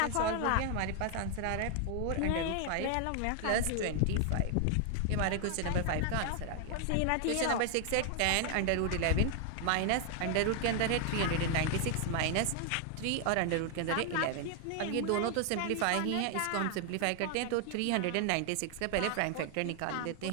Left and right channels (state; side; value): different; both; correlation 0.00